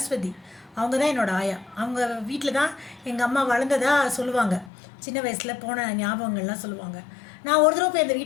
அவங்க தான் என்னோடய ஆயா. அவங்க வீட்டில் தான் எங்கள் அம்மா வளர்ந்ததாக சொல்லுவாங்க. சின்ன வயசில் போன ஞாபகங்கள்லாம் சொல்லுவாங்க. நான் ஒரு தடவை போய் அந்த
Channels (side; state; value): right; drops out; at 4.7 s